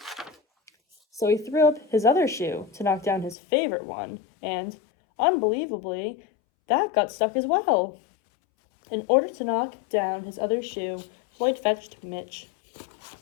So he threw up his other shoe to knock down his favorite one, and, unbelievably, that got stuck as well. In order to knock down his other shoe, Floyd fetched Mitch.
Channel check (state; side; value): drops out; right; at 3.4 s